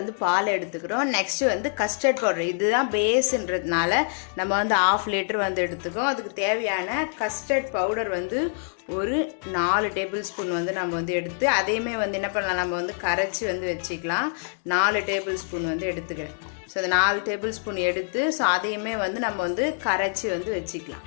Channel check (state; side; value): silent; right; digital silence